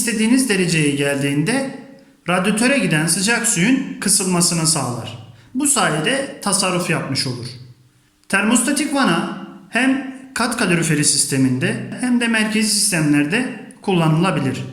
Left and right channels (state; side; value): identical; both; correlation 1.00